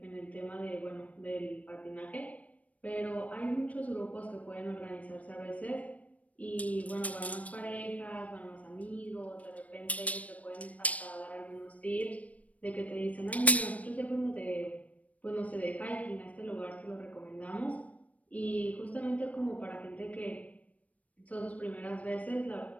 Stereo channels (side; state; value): right; late; 0.068 ms